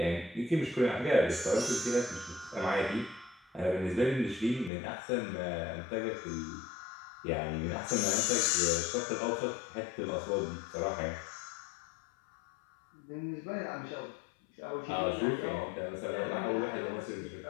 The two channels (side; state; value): right; drops out; at 4.7 s